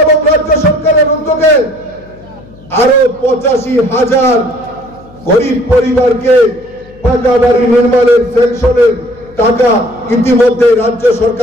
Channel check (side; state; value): left; noise; hum, 24 dB below the sound